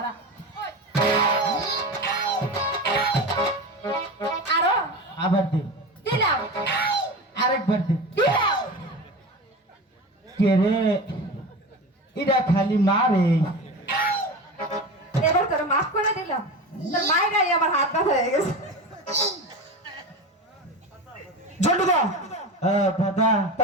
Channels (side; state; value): both; normal; correlation 0.27